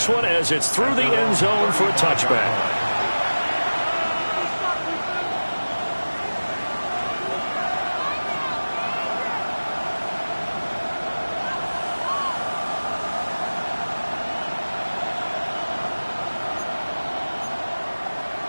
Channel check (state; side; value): inverted; both; correlation -1.00